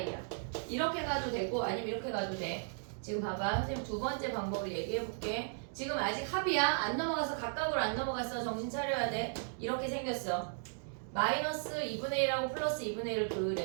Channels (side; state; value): left; silent; digital silence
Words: 이렇게 가도 되고 아니면 이렇게 가도 돼. 지금 봐봐. 선생님 두 번째 방법을 얘기해 볼게. 지금 아직 합이야. 안 넘어가서 각각으로 안 넘어갔어. 정신 차려야 돼. 이렇게 생겼어. 마이너스 2분의 1하고 플러스 2분의 1을